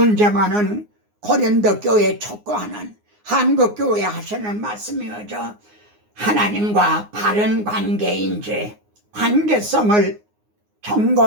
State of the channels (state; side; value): late; left; 9.6 ms